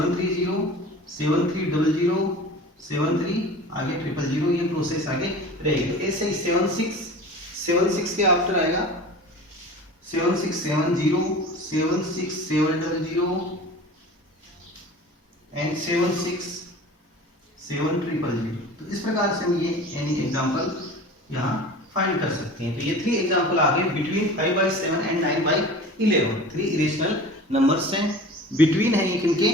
7300 73 आगे 000, ये प्रोसेस आगे रहेगी। तो ऐसे ही 76 के आफ्टर आएगा 7670 76700 एंड 76700। तो इस प्रकार से हम ये यानी एग्जांपल यहाँ फाइंड कर सकते हैं। तो ये 3 एग्जांपल आ गए बिटवीन 5/7 एंड 9/11, 3 इरेशनल नंबर्स हैं बिटवीन है इनके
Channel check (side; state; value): both; normal; correlation 0.38